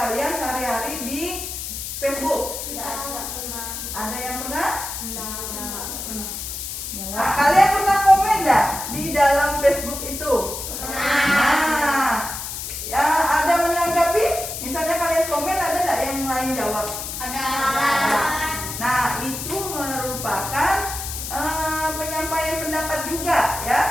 sehari-hari di Facebook? Ada yang pernah? Nah, kalian pernah komen nggak di dalam Facebook itu? Nah, ya ada menanggapi? Misalnya kalian komen, ada nggak yang lain jawab? Nah, itu merupakan penyampaian pendapat juga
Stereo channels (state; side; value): noise; left; hiss, 6 dB below the sound